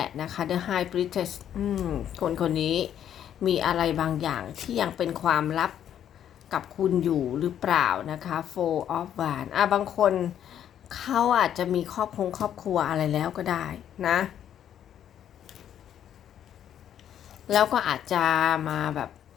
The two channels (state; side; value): quieter; right; 10.0 dB